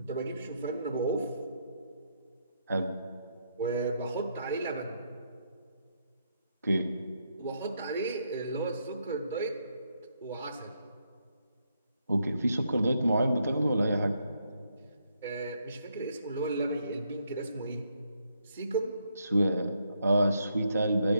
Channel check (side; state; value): both; inverted; correlation -0.76